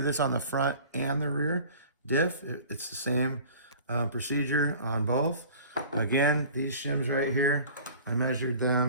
this on the front and the rear diff. It's the same procedure on both. Again, these shims right here, I measured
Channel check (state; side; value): inverted; both; correlation -0.44